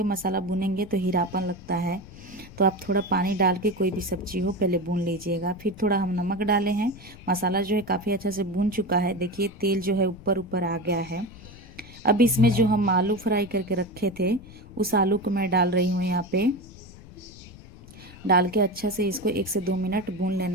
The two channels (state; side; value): noise; left; rumble, 19 dB below the sound